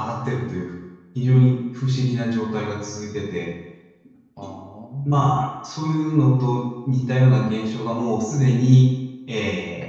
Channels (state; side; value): identical; both; correlation 1.00